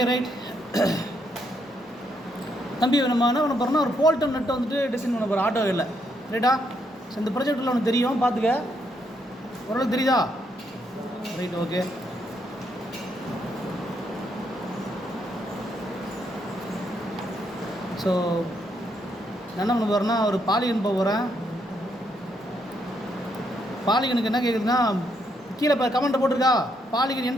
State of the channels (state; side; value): normal; both; correlation 0.76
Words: right. தம்பி நம்ம என்ன பண்ண போகிறோம்னா ஒரு போல்டன் நெட்டை வந்துட்டு டிசைன் பண்ண போகிறோம் ஆட்டோ இல்லை ரைட்டா. ஸோ இந்த ப்ராஜெக்டில் ஒன்று தெரியும், பார்த்துக்க. ஓரளவுக்கு தெரியுதா? Right, okay. ஸோ நான் என்ன பண்ண போகிறேன்னா ஒரு பாலிகன் போக போகிறேன். பாலிகனுக்கு என்ன கேட்குதுன்னா கீழே இப்போ கமெண்ட்டை போட்டிருக்கா, polygon